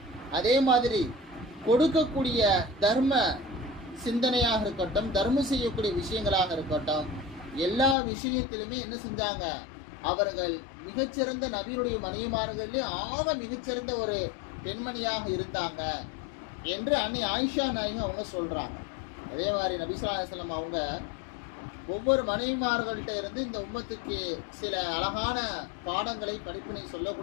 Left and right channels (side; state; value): right; drops out; at 8.0 s